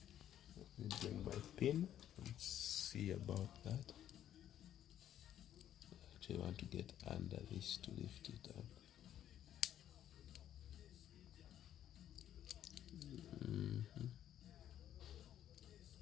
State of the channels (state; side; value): quieter; right; 11.0 dB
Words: Let me bring my pin and see about that. Actually, I want to get under this to lift it up.